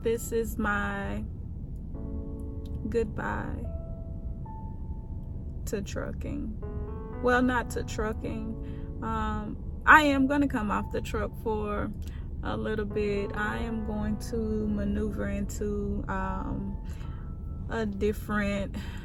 this is my goodbye to trucking. Well, not to trucking. I am gonna come off the truck for a little bit. I am going to maneuver into a different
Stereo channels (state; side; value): identical; both; correlation 1.00